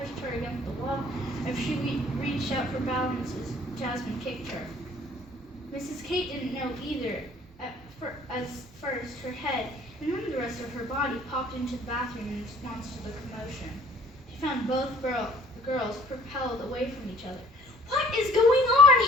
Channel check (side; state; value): both; normal; correlation 0.54